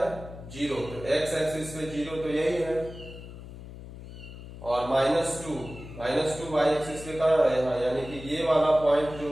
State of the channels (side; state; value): left; noise; hum, 14 dB below the sound